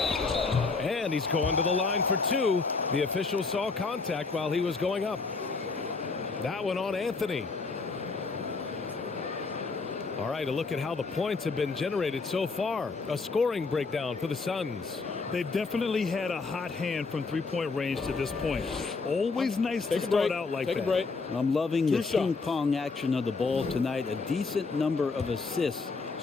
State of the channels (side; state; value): right; quieter; 4.2 dB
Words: And he's going to the line for 2. The official saw contact while he was going up. That one on Anthony. All right, a look at how the points have been generated so far. A scoring breakdown for the Suns. They've definitely had a hot hand from three-point range to this point. Always nice to start out like that. Take a break. I'm loving the True ping pong action of the ball tonight. A decent number of assists